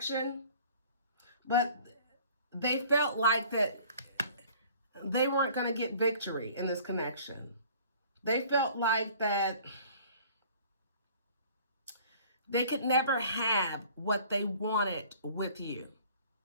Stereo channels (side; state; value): both; inverted; correlation -0.50